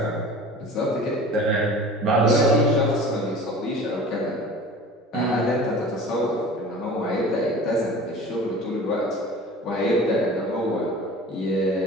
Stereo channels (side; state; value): both; normal; correlation 0.40